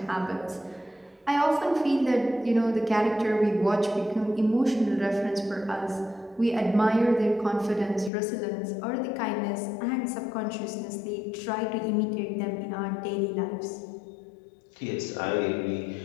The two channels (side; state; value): right; drops out; at 8.1 s